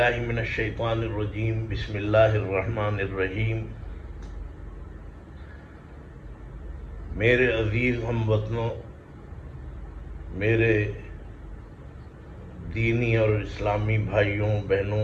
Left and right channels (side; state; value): both; identical; correlation 1.00